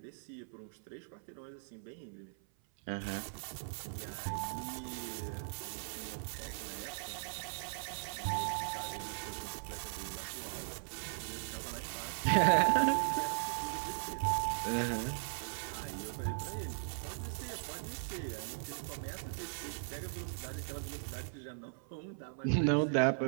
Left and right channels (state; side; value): silent; left; 52 dB below the other